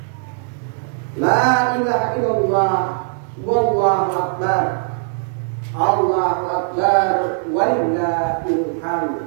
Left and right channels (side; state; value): left; silent; digital silence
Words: La ilaha illallah. Wallahu akbar. Allahu akbar. Walillahil hamd.